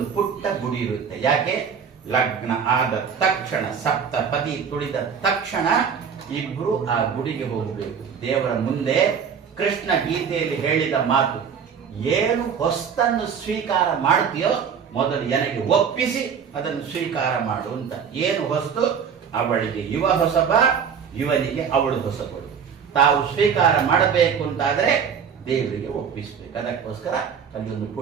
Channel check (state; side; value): quieter; left; 7.0 dB